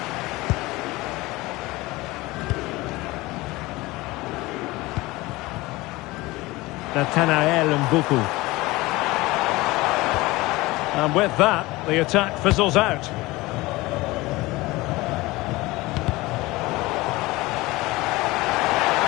Nathanael Mbuku. And with that, the attack fizzles out.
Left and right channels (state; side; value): quieter; right; 20.7 dB